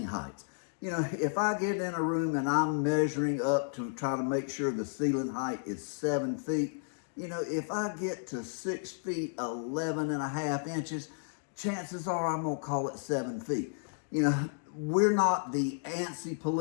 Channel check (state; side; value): silent; right; digital silence